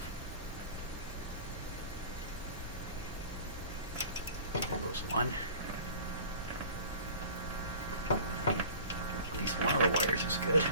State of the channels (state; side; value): inverted; both; correlation -0.43